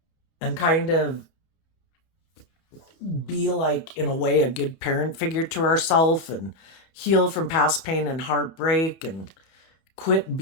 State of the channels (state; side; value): late; right; 31 ms